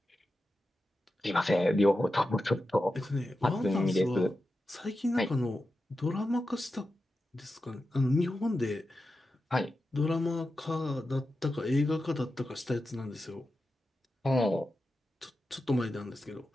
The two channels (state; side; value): normal; both; correlation 0.91